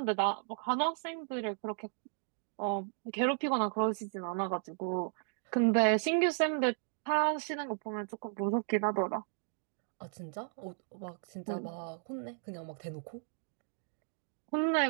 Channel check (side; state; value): left; silent; digital silence